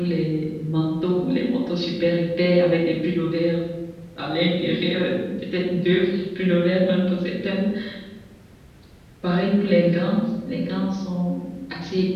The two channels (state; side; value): identical; both; correlation 1.00